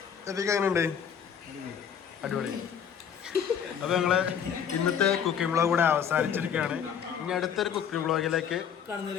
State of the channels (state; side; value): quieter; right; 8.0 dB